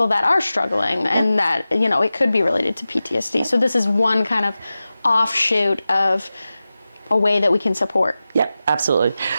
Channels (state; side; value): inverted; both; correlation -0.95